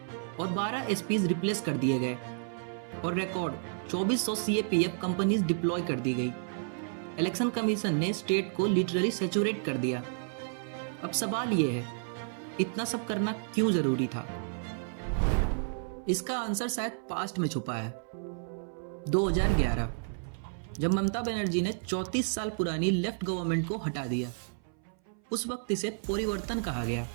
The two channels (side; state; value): left; silent; 57 dB below the other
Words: और 12 एसपीज रिप्लेस कर दिए गए और रिकॉर्ड 2400 सीएपीएफ कंपनीज डिप्लॉय कर दी गई। इलेक्शन कमीशन ने स्टेट को लिटरली सैचुरेट कर दिया। अब सवाल यह है, इतना सब करना क्यों जरूरी था? इसका आंसर शायद पास्ट में छुपा है। 2011, जब ममता बनर्जी ने 34 साल पुरानी लेफ्ट गवर्नमेंट को हटा दिया, उस वक्त इसे परिवर्तन कहा गया,